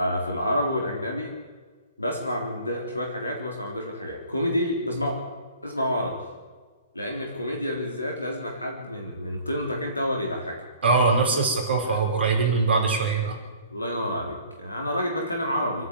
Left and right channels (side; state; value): both; inverted; correlation -0.51